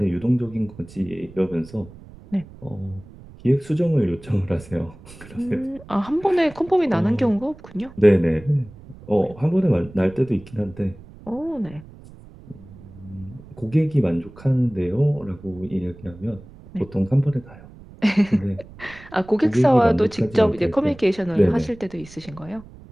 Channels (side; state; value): right; noise; rumble, 20 dB below the sound